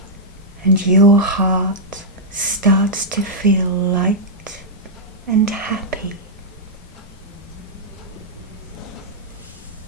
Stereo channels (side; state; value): both; normal; correlation -0.07